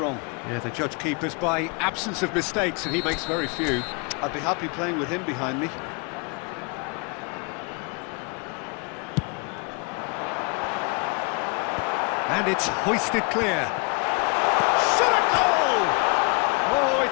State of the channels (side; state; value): right; quieter; 32.1 dB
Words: Yeah, the judge keepers by absence of mistakes, and he makes very few. I'd be happy playing with him behind me. And it's hoisted clear. Shot at goal! Oh,